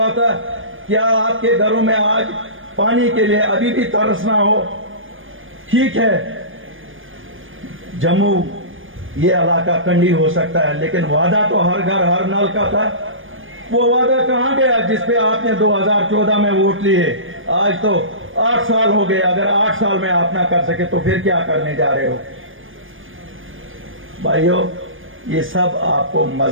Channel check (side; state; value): left; late; 0.58 ms